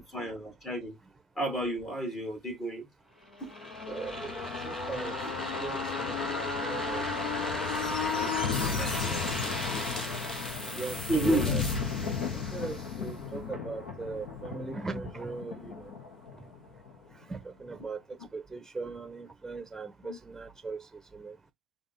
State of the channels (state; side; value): normal; both; correlation 0.46